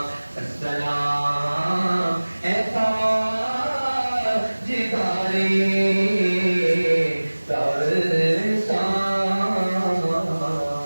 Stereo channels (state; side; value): inverted; both; correlation -1.00